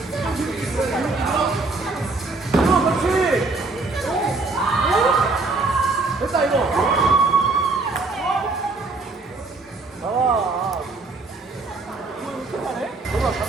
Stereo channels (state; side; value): quieter; left; 3.6 dB